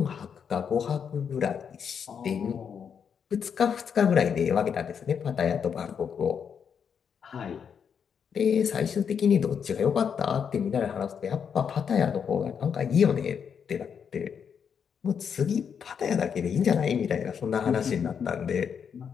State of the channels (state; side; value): quieter; right; 7.2 dB